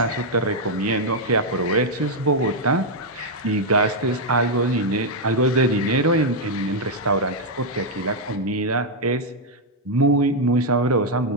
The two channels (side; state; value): both; normal; correlation -0.01